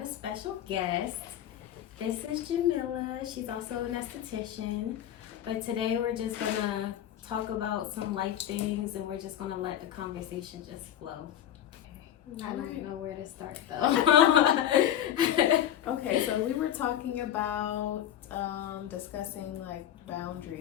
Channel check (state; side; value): quieter; right; 11.0 dB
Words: special guest. This is Jamila. She's also an esthetician. But today we're just gonna talk about some life things and we're just gonna let the conversation just flow. I don't know where to start though. Okay, so we were talking about discussing like